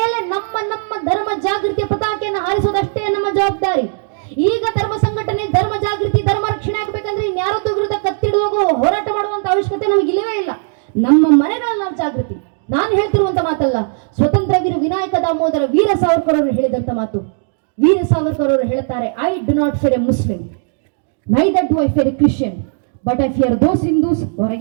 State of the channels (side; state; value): left; silent; 58 dB below the other